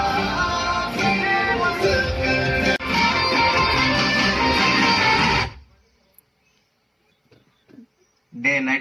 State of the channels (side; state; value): both; identical; correlation 1.00